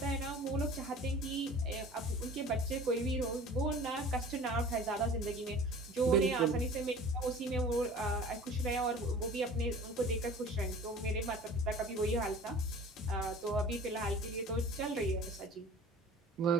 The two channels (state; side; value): normal; both; correlation 0.43